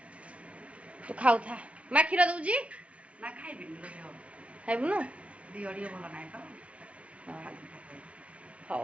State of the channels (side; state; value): left; late; 0.063 ms